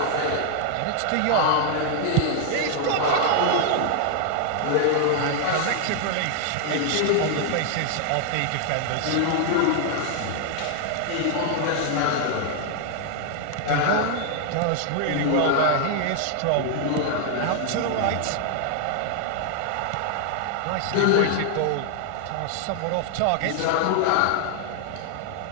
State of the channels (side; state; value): both; different; correlation 0.00